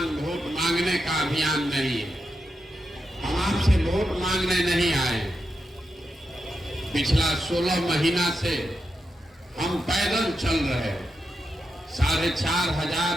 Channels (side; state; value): both; normal; correlation 0.86